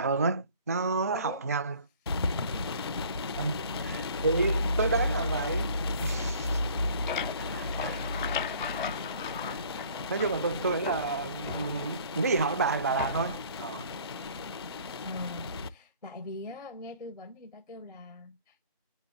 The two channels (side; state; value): both; inverted; correlation -0.52